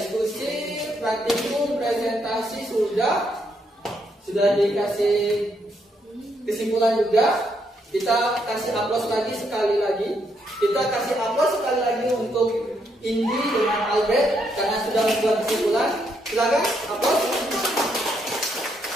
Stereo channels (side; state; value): both; normal; correlation 0.76